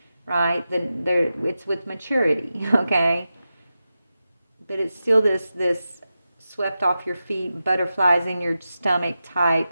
Right? It's with maturity, okay? But it's still this swept off your feet, butterflies in your stomach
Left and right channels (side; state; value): both; inverted; correlation -0.92